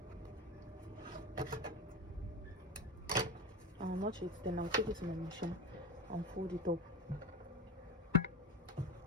I'll notch it, then I'll take it to my machine and fold it up.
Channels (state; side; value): normal; both; correlation 0.23